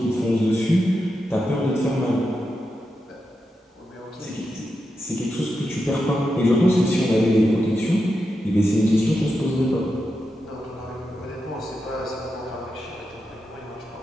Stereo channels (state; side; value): normal; both; correlation 0.88